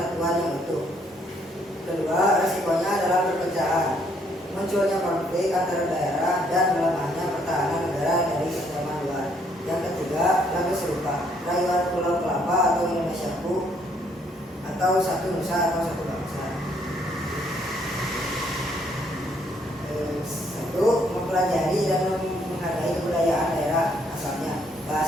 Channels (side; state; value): both; normal; correlation 0.69